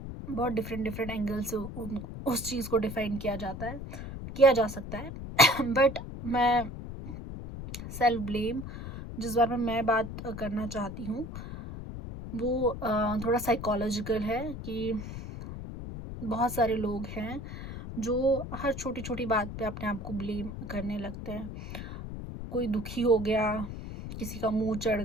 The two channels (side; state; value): left; noise; rumble, 8 dB below the sound